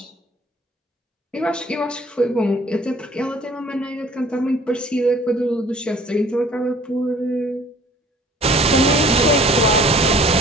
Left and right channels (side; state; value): both; normal; correlation 0.53